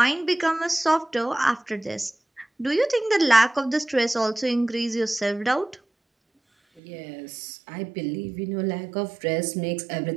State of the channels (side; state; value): left; drops out; at 6.8 s